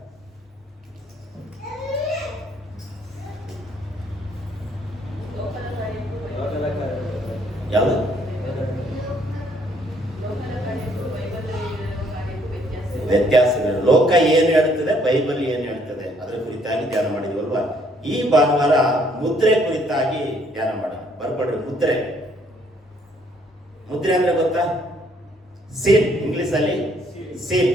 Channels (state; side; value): normal; both; correlation 0.66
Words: ಯಾವುದು? ವ್ಯತ್ಯಾಸಗಳು. ಲೋಕ ಏನು ಹೇಳ್ತದೆ, ಬೈಬಲ್ ಏನು ಹೇಳ್ತದೆ, ಅದರ ಕುರಿತಾಗಿ ಧ್ಯಾನ ಮಾಡಿದ್ವಲ್ವಾ? ಈ ಭಾನುವಾರ ಮುದ್ರೆ ಕುರಿತಾಗಿ ಧ್ಯಾನ ಮಾಡೋಣ. ಬರ್ಕೊಡ್ರಿ. ಮುದ್ರೆ, ಮುದ್ರೆ ಅಂದ್ರೆ ಗೊತ್ತಾ? ಸೀಲ್, ಇಂಗ್ಲಿಷ್ ಅಲ್ಲಿ ಸೀಲ್,